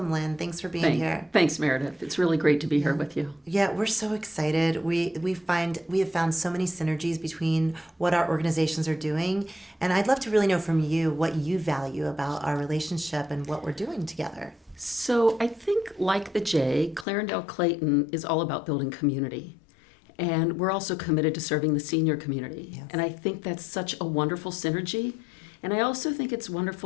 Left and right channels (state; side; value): drops out; right; at 17.1 s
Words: Lynn. Thanks for being here. Thanks, Meredith. It's really great to be here with you. Yeah, we're so excited. We have found so many synergies between what our organizations are doing, and I'd love to really know from you what you value about our relationship and what we're doing together. So I think, like the J, Clarendale Clayton is all about building community. And we're also committed to serving the senior community. Yes. And I think that's such a wonderful synergy. And I also think it's